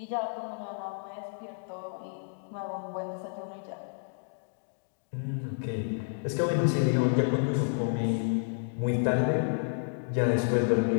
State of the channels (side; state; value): right; silent; digital silence